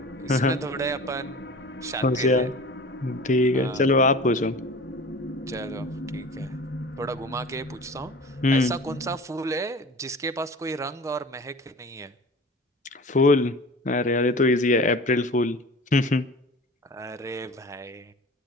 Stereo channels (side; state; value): both; normal; correlation 0.38